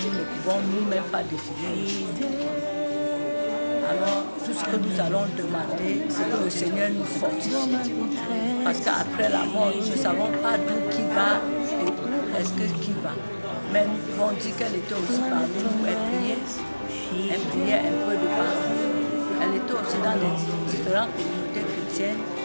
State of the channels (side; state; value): both; inverted; correlation -1.00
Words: nous ne pouvons nous-mêmes pas définir. Alors, tout ce que nous allons demander, c'est que le Seigneur nous fortifie. Parce qu'après la mort, nous ne savons pas d'où qui va et où est-ce que qui va. Mais nous pouvons dire qu'elle était aussi parmi nous, elle priait un peu de partout. Elle était aussi dans les différentes communautés chrétiennes.